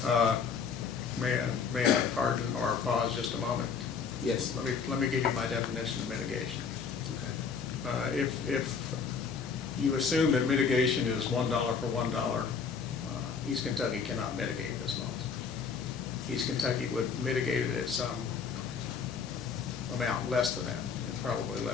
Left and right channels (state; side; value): quieter; right; 5.9 dB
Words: May I pardon or pause just a moment? Yes. Let me give you my definition of mitigation. Okay. If you assume that mitigation is $1 for $1, East Kentucky cannot mitigate this loss. East Kentucky would mitigate it at some amount less than that, and probably